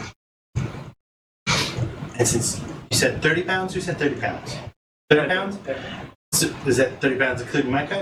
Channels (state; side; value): identical; both; correlation 1.00